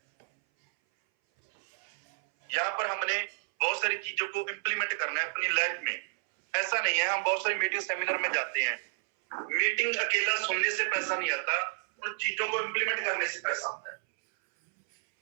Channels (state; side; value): silent; left; 57 dB below the other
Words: यहाँ पर हमने बहुत सारी चीजों को इंप्लीमेंट करना है अपनी लाइफ में। ऐसा नहीं है, हम बहुत सारी मीटिंग सेमिनार में जाते हैं, मीटिंग अकेला सुनने से पैसा नहीं आता, उन चीजों को इंप्लीमेंट करने से पैसा आता है।